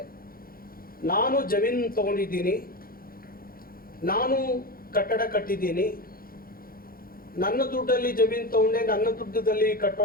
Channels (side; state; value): right; late; 0.42 ms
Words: ನಾನು ಜಮೀನು ತಗೊಂಡಿದ್ದೀನಿ, ನಾನು ಕಟ್ಟಡ ಕಟ್ಟಿದ್ದೀನಿ, ನನ್ನ ದುಡ್ಡಲ್ಲಿ ಜಮೀನು ತಗೊಂಡೆ, ನನ್ನ ದುಡ್ಡದಲ್ಲಿ